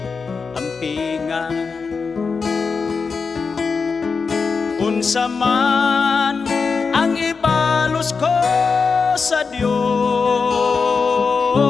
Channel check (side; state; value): right; quieter; 5.0 dB